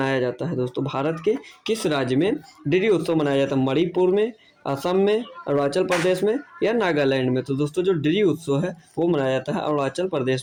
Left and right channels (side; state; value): both; identical; correlation 1.00